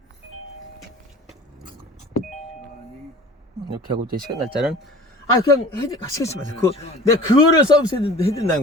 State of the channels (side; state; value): both; normal; correlation 0.42